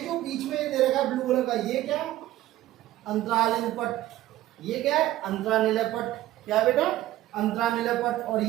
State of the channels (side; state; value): left; quieter; 14.8 dB